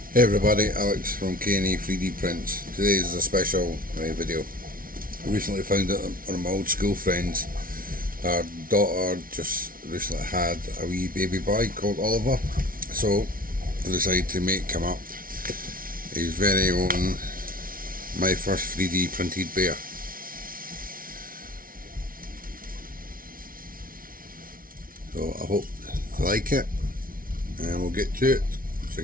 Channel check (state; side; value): late; left; 0.42 ms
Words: Hey everybody, Alex from K&E 3D Prints. Today is a special video. I recently found out one of my old school friends, her daughter just recently had a wee baby boy called Oliver, so I decided to make him up his very own My First 3D Printed Bear. So I hope you like it, and we'll get to it so